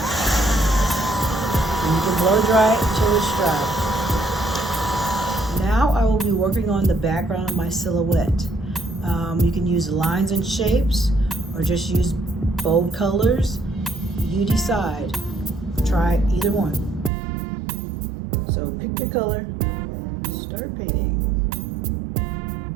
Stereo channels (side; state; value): left; drops out; at 17.1 s